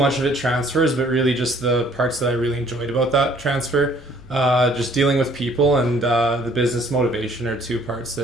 of it transfers, but really just the parts that I really enjoyed about that transfer, just dealing with people and the business motivation are two parts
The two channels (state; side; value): normal; both; correlation 0.59